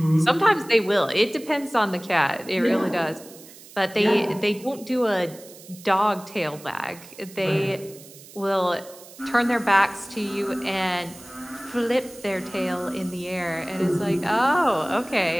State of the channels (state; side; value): noise; right; hiss, 20 dB below the sound